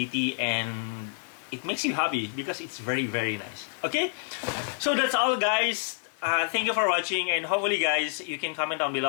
and it makes you happy because it's very nice. Okay, so that's all, guys. Thank you for watching, and hopefully, guys, you can comment down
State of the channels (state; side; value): silent; right; digital silence